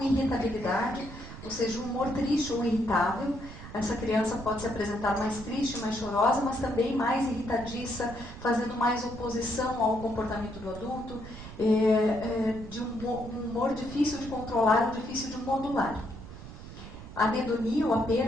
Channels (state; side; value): noise; right; rumble, 13 dB below the sound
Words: ou seja, o humor triste ou irritável. Essa criança pode se apresentar mais triste, mais chorosa, mas também mais irritadiça, fazendo mais oposição ao comportamento do adulto, de um humor difícil de controlar ou difícil de modular. A anedonia ou a